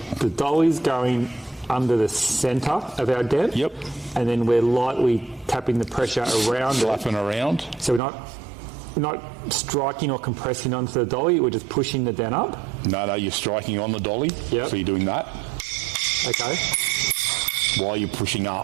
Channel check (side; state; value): left; drops out; at 8.0 s